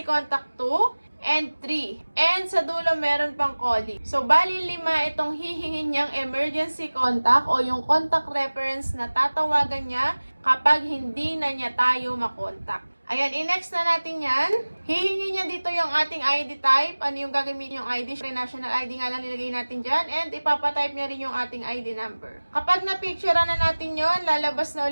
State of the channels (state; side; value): inverted; both; correlation -1.00